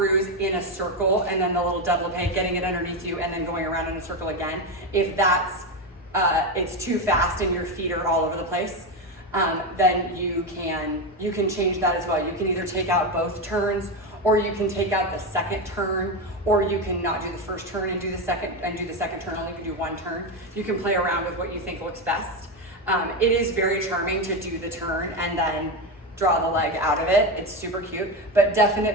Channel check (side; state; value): both; normal; correlation 0.13